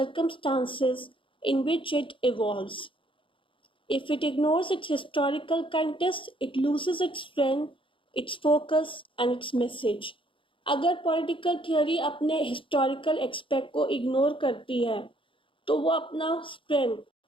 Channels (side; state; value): right; late; 0.25 ms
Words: in which it evolves. If it ignores its historical context, it loses its strength, its focus, and its message. अगर political theory अपने historical aspect को ignore करती है तो वो अपना strength,